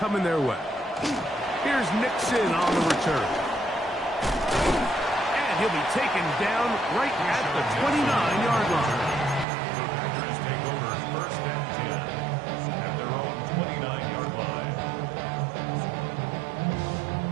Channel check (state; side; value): drops out; left; at 9.5 s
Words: their way. Here's Nixon on the return. And he'll be taken down right at the 29-yard line. The Packers take over first and 10 at their own 29-yard line.